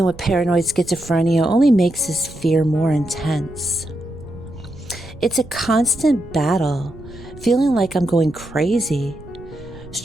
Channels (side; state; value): right; noise; rumble, 18 dB below the sound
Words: with paranoid schizophrenia only makes this fear more intense. It's a constant battle, feeling like I'm going crazy,